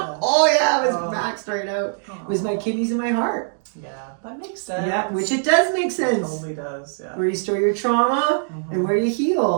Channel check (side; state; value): left; silent; digital silence